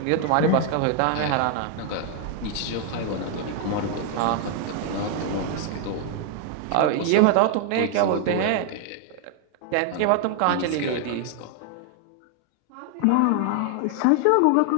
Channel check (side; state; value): both; different; correlation 0.00